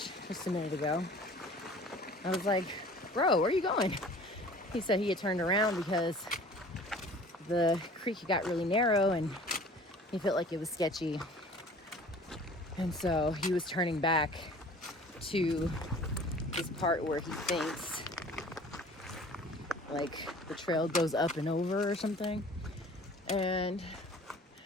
just a minute ago. I was like, bro, where are you going? He said he had turned around because the creek got really narrow and he felt like it was sketchy. And so he was turning back to this part where he thinks like the trail goes up and over or something. And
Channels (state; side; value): normal; both; correlation 0.47